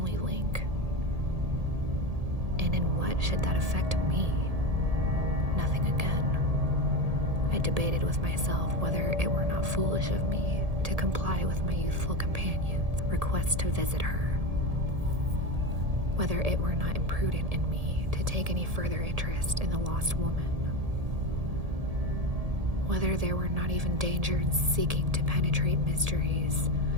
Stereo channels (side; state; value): left; late; 1.7 ms